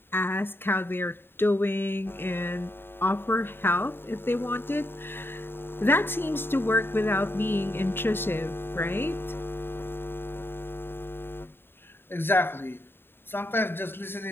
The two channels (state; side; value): late; right; 0.11 ms